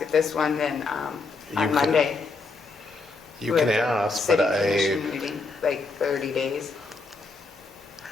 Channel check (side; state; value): right; quieter; 3.7 dB